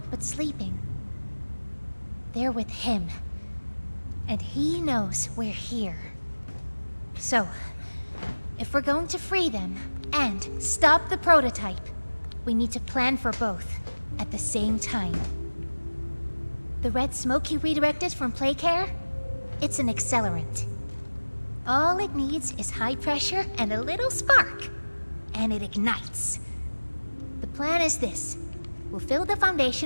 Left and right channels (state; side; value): inverted; both; correlation -1.00